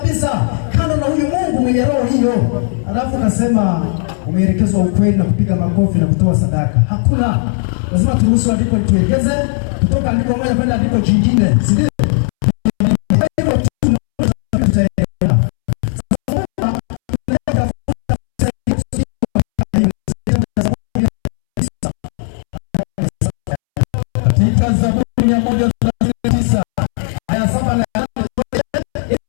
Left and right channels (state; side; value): silent; right; 70 dB below the other